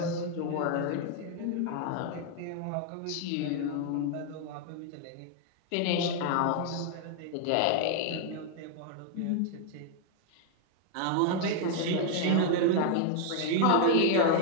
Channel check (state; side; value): different; both; correlation 0.00